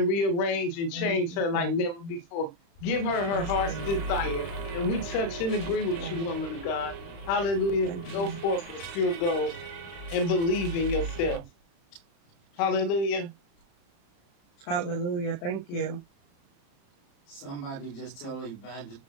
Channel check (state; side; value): late; right; 35 ms